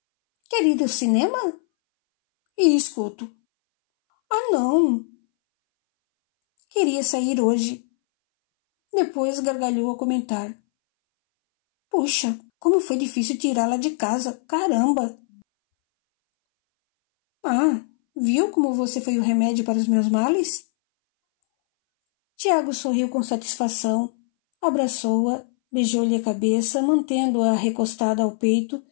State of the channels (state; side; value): silent; right; 61 dB below the other